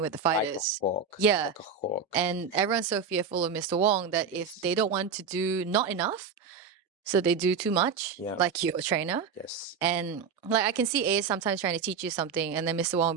with the Like a fighters. hawk. Yeah. Like a hawk. And everyone's so fearful of Mr. Wong that if they don't want to do not enough, so they do too much, Yeah. like your trainer. Yes. And like I can see A sometimes trying to teach you something, and then Mr. Wong will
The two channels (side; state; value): left; quieter; 5.9 dB